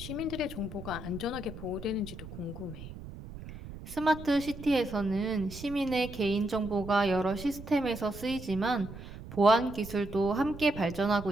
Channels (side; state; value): right; noise; rumble, 13 dB below the sound